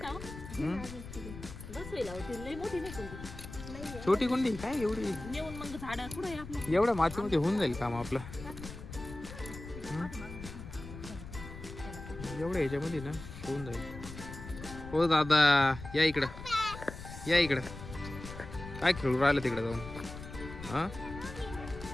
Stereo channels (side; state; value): left; noise; rumble, 12 dB below the sound